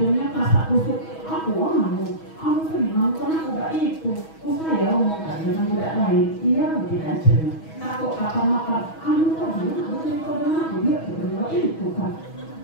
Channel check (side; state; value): right; late; 6.2 ms